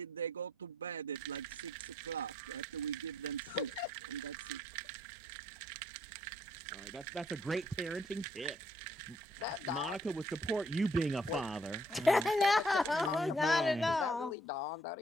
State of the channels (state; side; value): normal; both; correlation 0.68